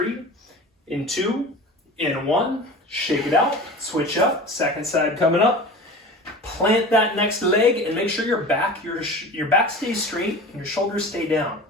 in 2, in 1. Shake it out, switch up, second side coming up. Plant that next leg and make sure your back stays straight and your shoulders stay down.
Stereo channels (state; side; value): normal; both; correlation 0.36